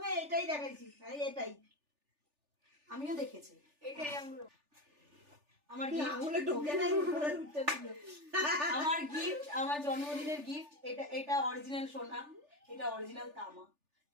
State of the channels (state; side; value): late; left; 3.4 ms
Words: এটাই দেখাইছি, এটাই আমিও দেখেছি। আমার গিফট, আমার জন্মদিনের গিফট। এটা অরিজিনাল সোনা, এটা অরিজিনাল তামা,